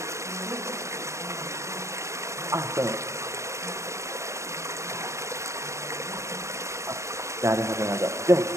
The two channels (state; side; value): late; left; 0.14 ms